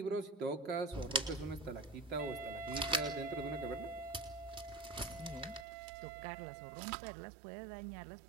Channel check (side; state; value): left; drops out; at 5.7 s